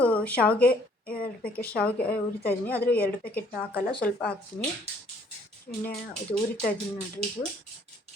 ಶಾವಿಗೆ 2 ಪ್ಯಾಕೆಟ್ ಶಾವಿಗೆ ಉರಿತಾ ಇದ್ದೀನಿ. ಆದರೆ 2 ಪ್ಯಾಕೆಟ್ ಹಾಕಲ್ಲ, ಸ್ವಲ್ಪ ಹಾಕ್ತೀನಿ. ಎಣ್ಣೆ ಇದು ಉರಿತಾ ಇದ್ದೀನಿ ನೋಡಿರಿ. ಇದು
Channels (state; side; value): normal; both; correlation 0.60